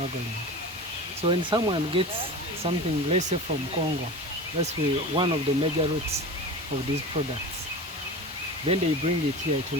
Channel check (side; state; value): both; normal; correlation 0.32